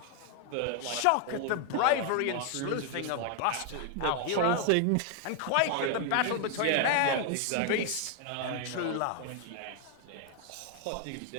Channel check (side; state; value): both; different; correlation 0.00